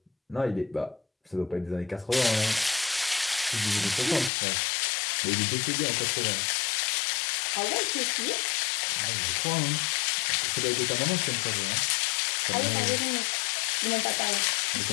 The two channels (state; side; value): drops out; right; at 4.3 s